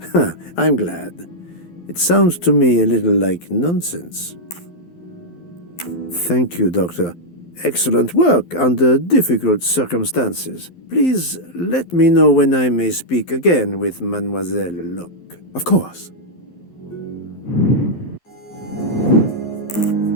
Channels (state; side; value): late; right; 12 ms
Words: I'm glad. It sounds to me a little like nonsense. Thank you, Doctor. Excellent work under difficult circumstances. Please let me know when I may speak again with Mademoiselle Locke. Of course.